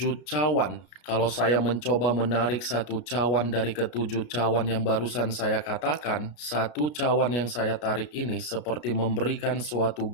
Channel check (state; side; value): late; right; 33 ms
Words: cawan. Kalau saya mencoba menarik satu cawan dari ketujuh cawan yang barusan saya katakan, satu cawan yang saya tarik ini seperti memberikan suatu